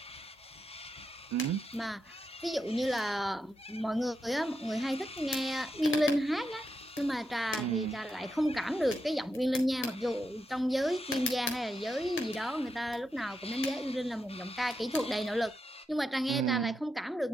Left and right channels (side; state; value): both; normal; correlation 0.85